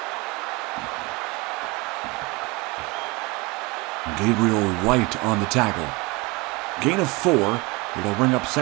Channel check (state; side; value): quieter; left; 25.5 dB